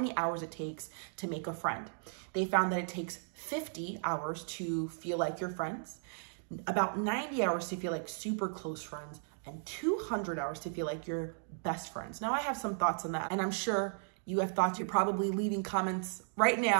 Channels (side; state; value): left; silent; digital silence